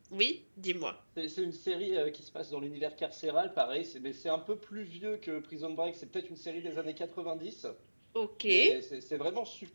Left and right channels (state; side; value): inverted; both; correlation -1.00